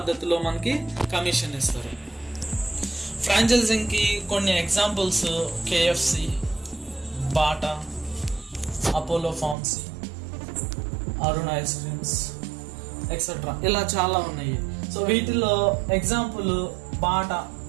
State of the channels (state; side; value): drops out; left; at 9.6 s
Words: మనకి కమిషన్ ఇస్తారు. ఫ్రాంచైజింగ్కి కొన్ని examples KFC, Bata, Apollo pharmacy, Arun ice creams etcetera, ఇలా చాలా ఉన్నాయి. సో వీటిలో ఎగ్జాంపుల్ బాటా